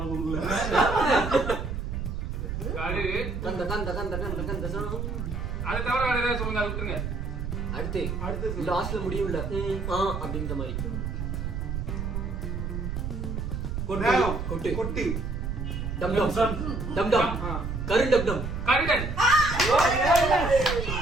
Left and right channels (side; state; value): right; noise; rumble, 3 dB below the sound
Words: கூகுள்ல கரு கந்த கந்த கந்த கந்த கந்த சாமி. அதை தவிர வேற ஏதாவது சொல்லுங்க, அதை விட்டுருங்க. அடுத்து லாஸ்ட்ல முடியும்ல அப்படின்ற மாதிரி. நேரம். கொட்டு. கொட்டு. டம் டம் டம் டம். கரு டம் டம். கருடன்